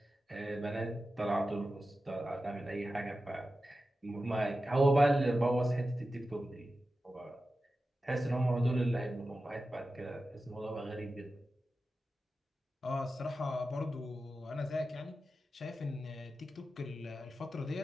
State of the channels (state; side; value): normal; both; correlation 0.93